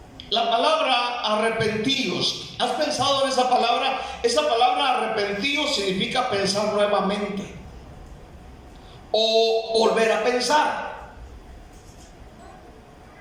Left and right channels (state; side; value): identical; both; correlation 1.00